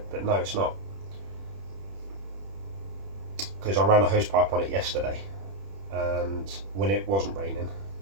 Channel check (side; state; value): left; late; 31 ms